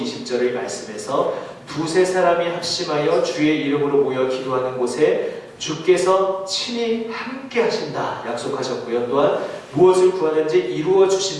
말씀에서 두세 사람이 합심하여 주의 이름으로 모여 기도하는 곳에 주께서 친히 함께 하신다 약속하셨고요. 또한 무엇을 구하는지 이루어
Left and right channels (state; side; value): identical; both; correlation 1.00